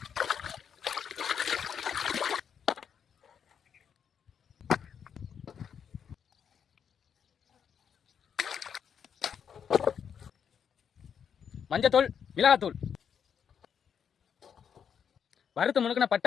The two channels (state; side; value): quieter; right; 7.7 dB